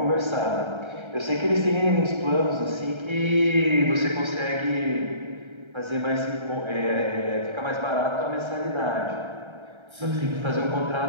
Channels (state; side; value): late; left; 1.3 ms